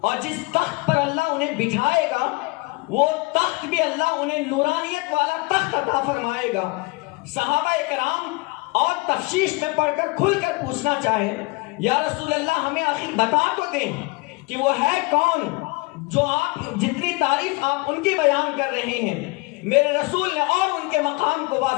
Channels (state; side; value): quieter; right; 25.8 dB